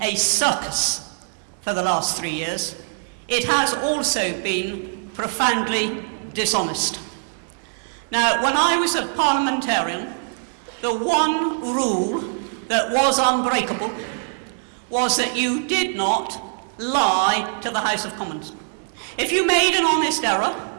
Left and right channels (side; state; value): left; silent; digital silence